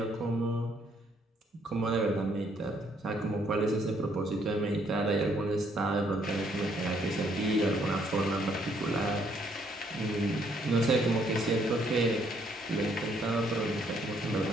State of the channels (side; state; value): both; normal; correlation 0.69